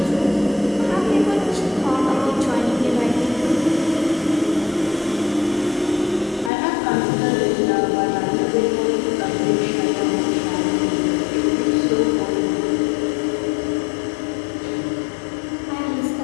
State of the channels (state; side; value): drops out; right; at 6.5 s